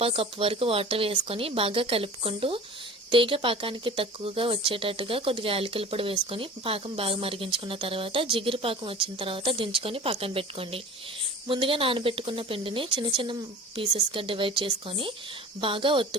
కప్పు వరకు వాటర్ వేసుకొని బాగా కలుపుకుంటూ తీగ పాకానికి తక్కువగా వచ్చేటట్టుగా కొద్దిగా యాలకుల పొడి వేసుకొని పాకం బాగా మరిగించుకున్న తర్వాత జిగురు పాకం వచ్చిన తర్వాత దించుకొని పక్కన పెట్టుకోండి. ముందుగా నానబెట్టుకున్న పిండిని చిన్న చిన్న పీసెస్గా డివైడ్ చేసుకొని బాగా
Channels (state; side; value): normal; both; correlation 0.39